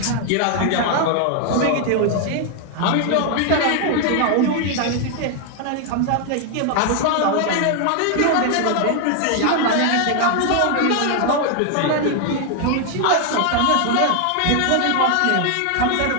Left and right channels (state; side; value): different; both; correlation 0.00